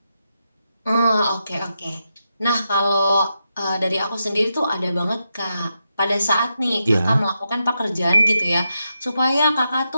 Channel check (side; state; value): both; inverted; correlation -0.86